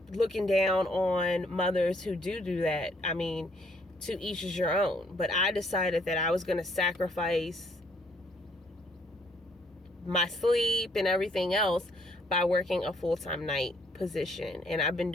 looking down on mothers who do that. I mean, to each is your own. But I decided that I was going to sacrifice my sleep and everything else by working a full-time night position, and I've been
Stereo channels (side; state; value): both; normal; correlation 0.67